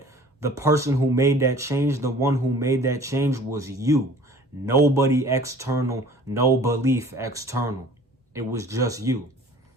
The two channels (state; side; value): normal; both; correlation 0.48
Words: the person who made that change, the one who made that change was you. Nobody external, no belief external. It was just you.